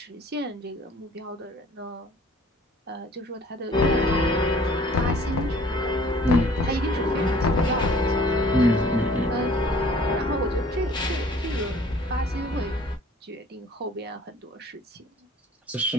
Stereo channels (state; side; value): normal; both; correlation 0.53